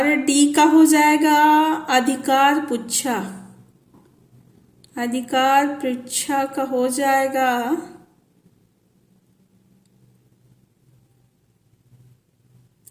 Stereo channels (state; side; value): identical; both; correlation 1.00